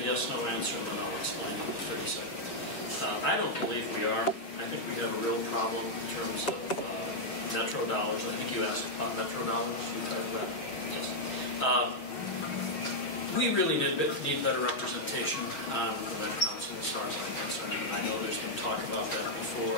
answer, and then I'll explain in 30 seconds. I don't believe we are. I think we have a real problem in terms of metro dollars. I think you asked about metro dollars. You talked about it. Yes. We really need better representation on the Met Council as far as I'm concerned. I know there's been talk about that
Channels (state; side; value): late; right; 6.3 ms